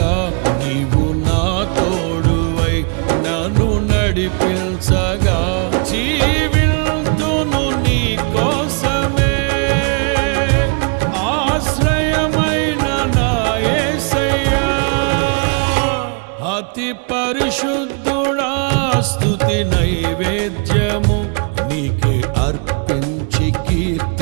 నీవు నా తోడువై నన్ను నడిపించగా, జీవింతును నీ కోసమే ఆశ్రయమైన నా యేసయ్యా. అతి పరిశుద్ధుడా స్తుతి నైవేద్యము నీకే అర్పించి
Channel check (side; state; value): left; quieter; 38.2 dB